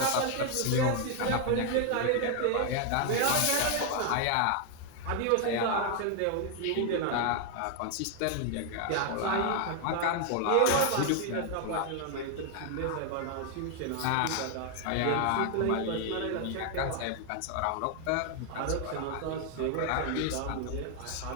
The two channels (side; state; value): both; different; correlation 0.00